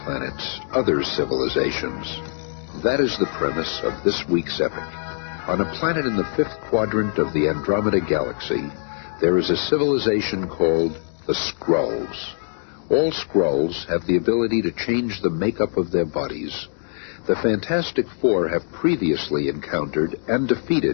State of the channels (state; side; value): silent; right; digital silence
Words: planets, other civilizations. That is the premise of this week's epic. On a planet in the fifth quadrant of the Andromeda Galaxy, there is a civilization called the Skrulls. All Skrulls have the ability to change the makeup of their bodies. The Fantastic Four have previously encountered and